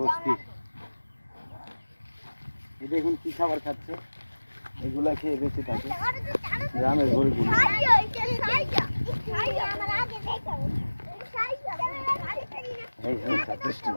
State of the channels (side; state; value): both; inverted; correlation -1.00